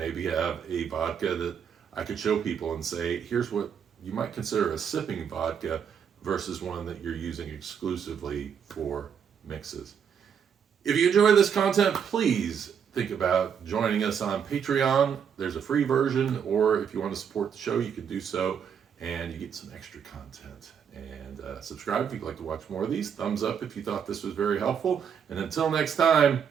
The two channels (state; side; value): quieter; left; 7.6 dB